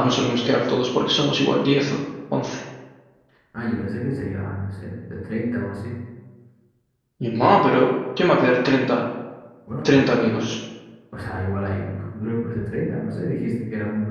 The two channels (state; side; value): identical; both; correlation 1.00